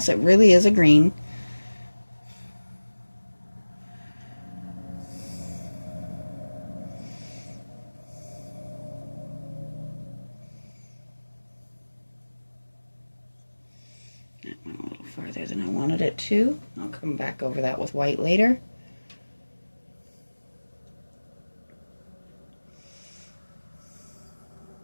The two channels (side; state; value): both; inverted; correlation -1.00